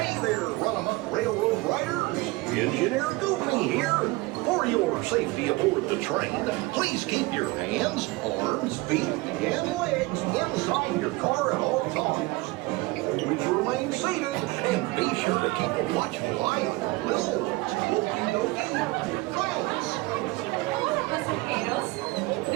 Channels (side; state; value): left; quieter; 22.5 dB